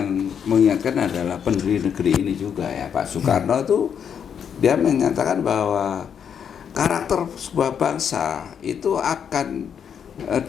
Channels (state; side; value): quieter; right; 7.8 dB